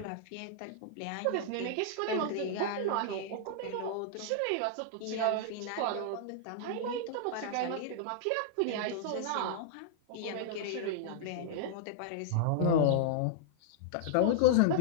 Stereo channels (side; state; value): both; different; correlation -0.01